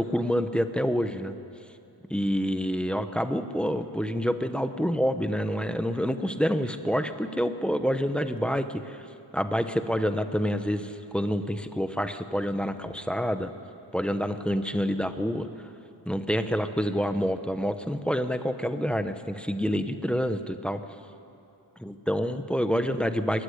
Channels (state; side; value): normal; both; correlation 0.88